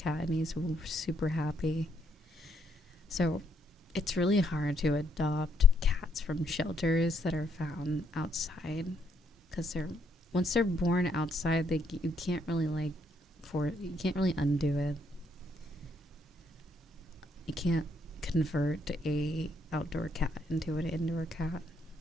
and he's super happy. So it's really hard to adopt cats from shelters that are found outside, because once they're born outside, you can't really undo it. You can't convert a outdoor cat into an indoor cat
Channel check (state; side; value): normal; both; correlation 0.72